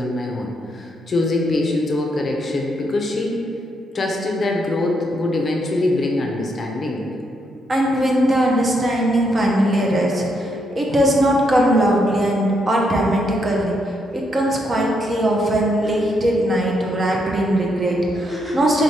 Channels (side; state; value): both; normal; correlation 0.77